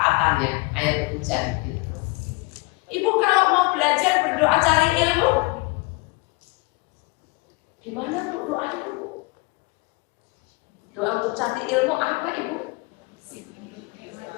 air hujan itu. Ibu kalau mau belajar berdoa cari ilmu, gimana bu doanya bu? Doa untuk cari ilmu apa ibu?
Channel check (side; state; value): right; quieter; 26.0 dB